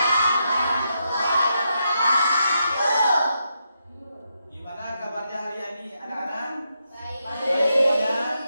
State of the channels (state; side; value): inverted; both; correlation -0.83